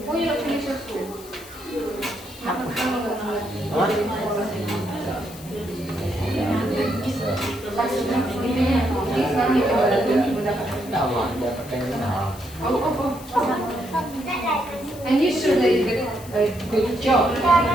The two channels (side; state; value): left; noise; hiss, 18 dB below the sound